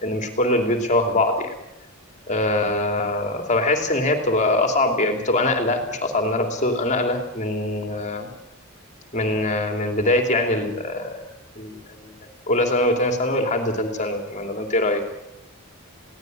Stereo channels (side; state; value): both; normal; correlation 0.09